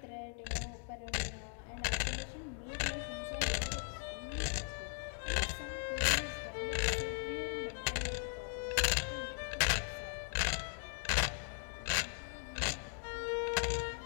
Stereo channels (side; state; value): right; silent; 52 dB below the other